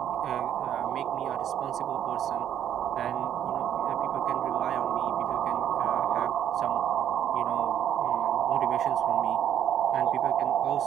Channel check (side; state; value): left; quieter; 10.1 dB